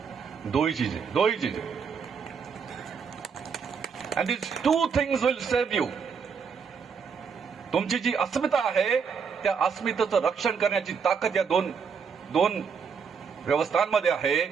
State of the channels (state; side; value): quieter; left; 6.2 dB